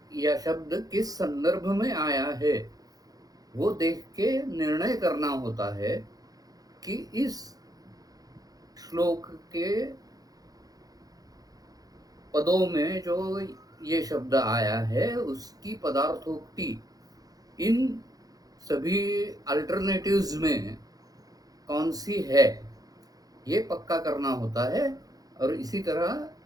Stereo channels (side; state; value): left; late; 0.18 ms